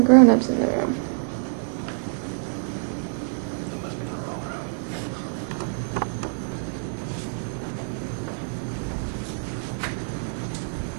grown-ups in the room. It must be the wrong room.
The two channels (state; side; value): silent; left; digital silence